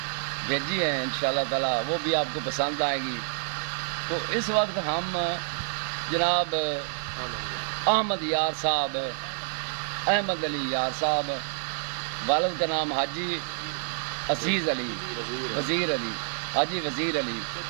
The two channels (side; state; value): left; silent; 58 dB below the other